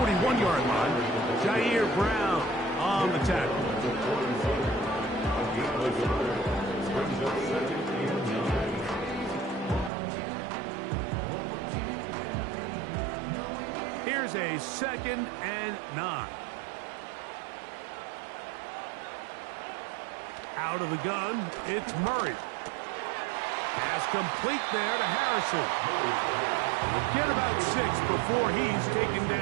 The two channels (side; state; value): left; drops out; at 9.9 s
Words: line. Jair Brown on the tackle. Here's a 2nd and 9. Out of the gun, it's Murray. Pass complete there to Harrison. He'll get about 6 before he's taken